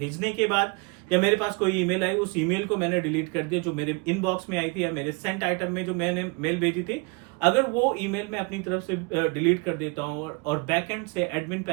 के बाद या मेरे पास कोई ईमेल आई, उस ईमेल को मैंने डिलीट कर दिया जो मेरे इनबॉक्स में आई थी या मेरे सेंट आइटम में जो मैंने मेल भेजी थी, अगर वो ईमेल मैं अपनी तरफ से डिलीट कर देता हूं और बैकएंड से एडमिन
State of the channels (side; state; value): left; quieter; 29.9 dB